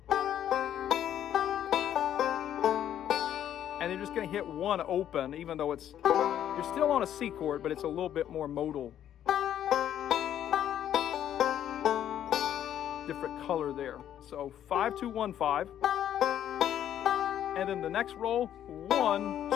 And you're just going to hit one open, even though it's, you're still on a C chord, but it's a little bit more modal. Different color there. So 5, 2, 1, 5. And then the next roll, 1,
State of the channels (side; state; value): right; quieter; 10.7 dB